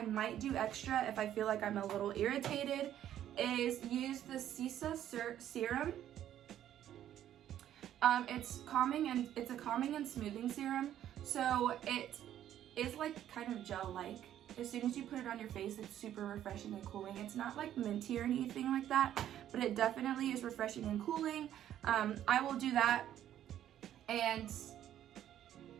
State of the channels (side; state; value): left; quieter; 11.3 dB